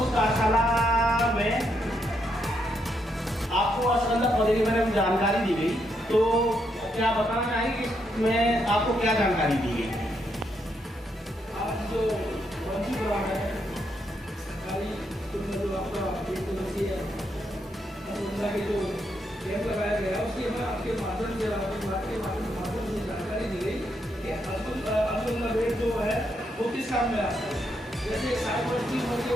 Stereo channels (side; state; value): both; normal; correlation 0.78